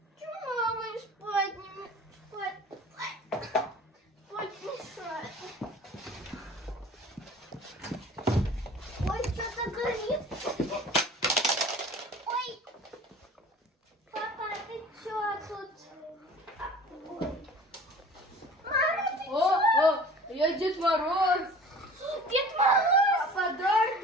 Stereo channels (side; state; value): both; normal; correlation 0.44